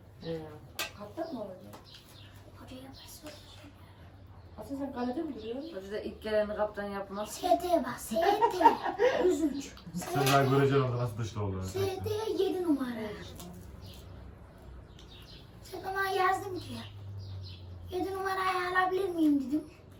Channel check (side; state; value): both; identical; correlation 1.00